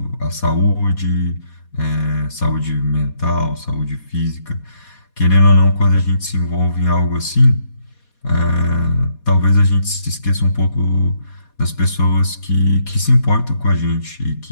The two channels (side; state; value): right; late; 4.2 ms